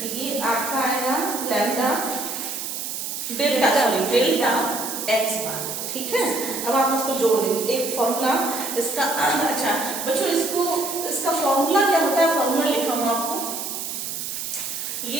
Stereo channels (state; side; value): noise; right; hiss, 5 dB below the sound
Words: ये आपका आएगा lambda delta, sorry delta x बार। ठीक है, अब आप इसको जोड़ देंगे, एक फॉर्मूला इसका। अच्छा बच्चों, इसका फॉर्मूला क्या होता है, फॉर्मूला लिखा हूं आपको,